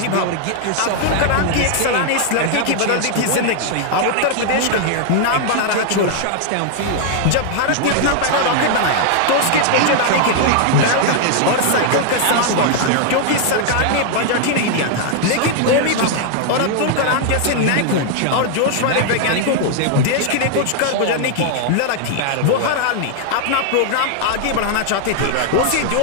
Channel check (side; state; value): both; different; correlation 0.00